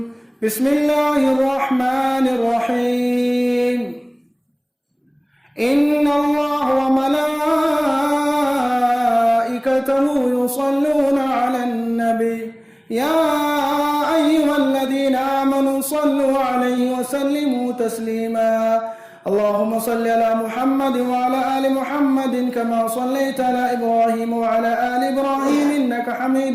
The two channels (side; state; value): both; identical; correlation 1.00